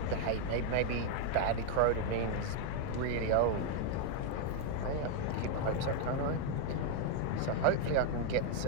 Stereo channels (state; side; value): different; both; correlation 0.00